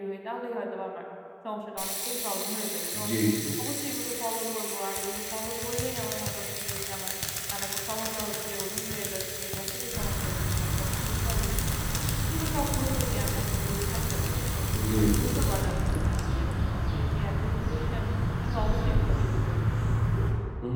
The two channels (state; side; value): identical; both; correlation 1.00